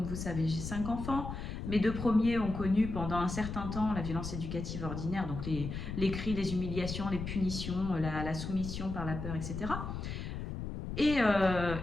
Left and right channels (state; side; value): noise; left; rumble, 6 dB below the sound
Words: vous savez, j'ai 5 enfants. Mes 2 premiers ont connu pendant un certain temps la violence éducative ordinaire, donc les cris, les humiliations, les punitions, la soumission par la peur, etc. Et